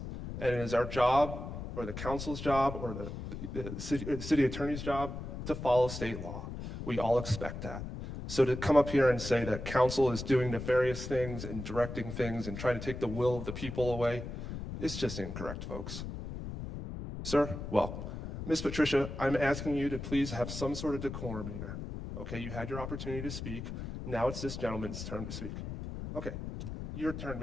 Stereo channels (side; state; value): left; noise; rumble, 7 dB below the sound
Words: and it is our job, or the council's job, or the city attorney's job to follow state law. We all expect that. So to come up here and say that council is doing nefarious things and directing things and trying to take the will of the people away, it's just incorrect, folks. Sir, well, Ms. Patricia, I'm asking you to please have some sort of decorum here. Okay, you had your opportunity to speak. Now it's this gentleman's turn to speak. Okay, your turn,